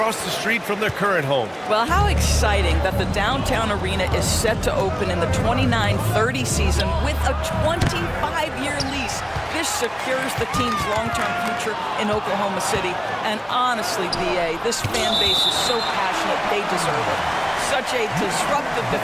the street from their current home. Well, how exciting that the downtown arena is set to open in the 29-30 season with a 25-year lease. This secures the team's long-term future in Oklahoma City. And honestly, BA, this fan base is so passionate, they deserve it. Such a disruptive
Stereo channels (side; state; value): both; identical; correlation 1.00